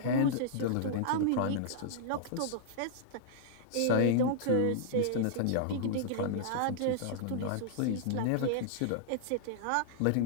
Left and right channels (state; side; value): different; both; correlation -0.02